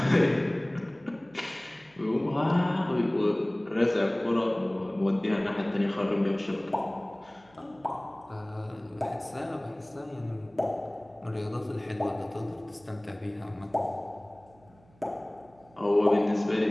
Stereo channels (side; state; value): right; noise; hum, 29 dB below the sound